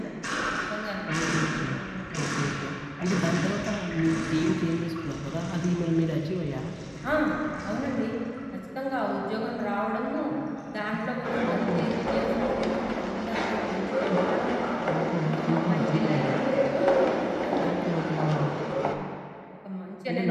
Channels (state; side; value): identical; both; correlation 1.00